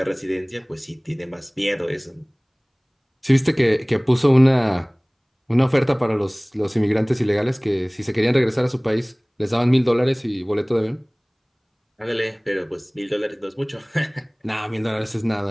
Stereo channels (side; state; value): both; identical; correlation 1.00